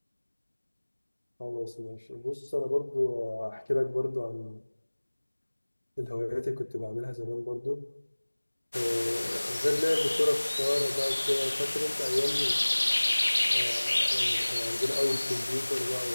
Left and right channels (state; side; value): inverted; both; correlation -1.00